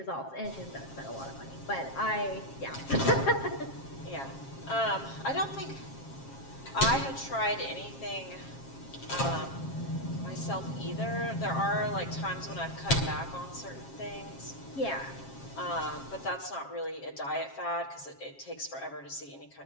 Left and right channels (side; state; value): right; late; 7.4 ms